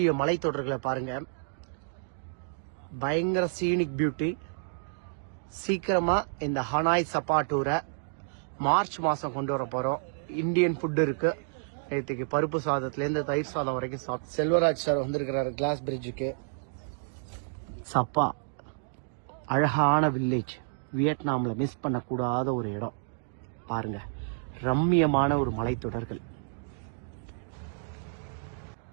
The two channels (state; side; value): silent; left; digital silence